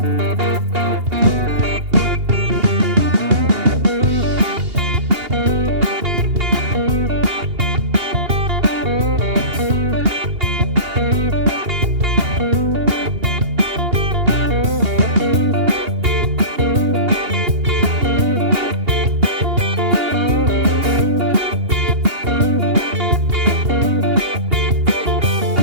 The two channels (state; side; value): late; left; 2.8 ms